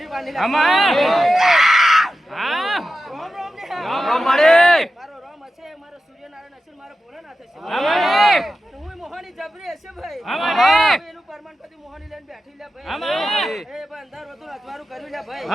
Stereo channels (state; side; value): normal; both; correlation 0.92